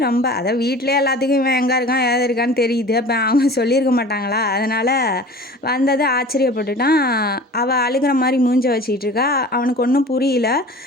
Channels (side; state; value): both; normal; correlation 0.41